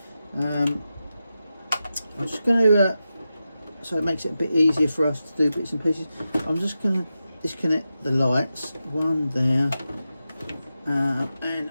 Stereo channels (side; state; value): both; inverted; correlation -0.91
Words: I'm just going to so it makes it a bit easier for us to do bits and pieces. I'm just going to disconnect the lights, one there, and